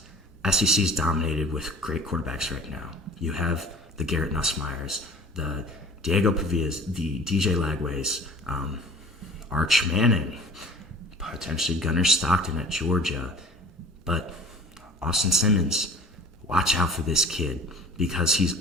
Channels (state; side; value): normal; both; correlation 0.45